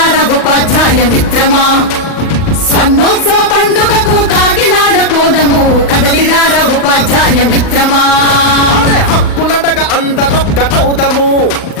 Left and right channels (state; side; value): late; right; 39 ms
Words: ఉపాధ్యాయ మిత్రమా స్వర్ణోత్సవ పండుగకు కాకినాడ పోదము కదలిరార ఉపాధ్యాయ మిత్రమా హక్కులడగ అందరొక్కటవుదము